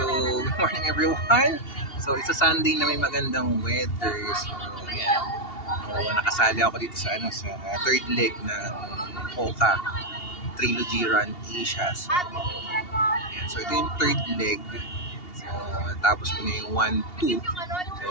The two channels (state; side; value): late; right; 2.8 ms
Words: good morning everyone. So, it's a Sunday na may magandang weather. So, yan. So, nakasali ako dito sa third leg ng Hoka Trilogy Run Asia. So, yan. So, ito yung third leg. So, tapos ko na yung 1-2.